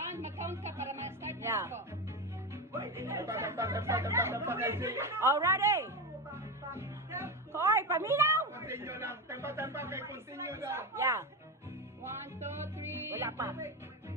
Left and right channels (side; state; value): both; normal; correlation 0.18